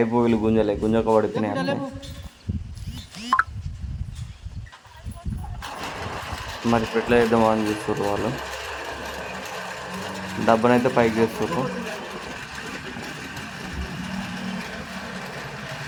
వీళ్ళు గుంజక పడిపోయినాయి అంటే మరి ఎట్లా చేద్దామో అని చూస్తారు వాళ్ళు. డబ్బనైతే పైకి చేస్తారు,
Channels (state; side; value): identical; both; correlation 1.00